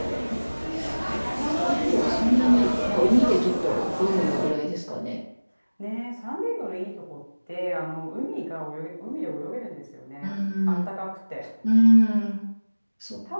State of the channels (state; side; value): inverted; both; correlation -1.00